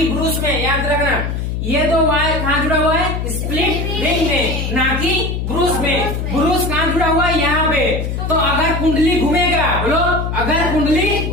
ब्रूस में, याद रखना। ये दो वायर कहाँ जुड़ा हुआ है, स्प्लिट रिंग में, ना कि ब्रूस में। ब्रूस कहाँ जुड़ा हुआ है, यहाँ पे। तो अगर कुंडली घूमेगा, बोलो अगर कुंडली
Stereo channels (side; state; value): left; noise; hum, 3 dB below the sound